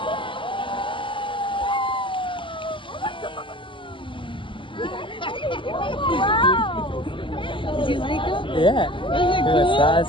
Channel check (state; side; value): late; right; 0.25 ms